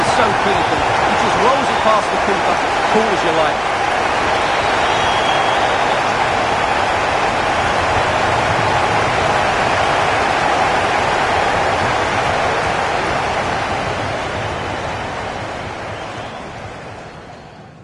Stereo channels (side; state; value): both; identical; correlation 1.00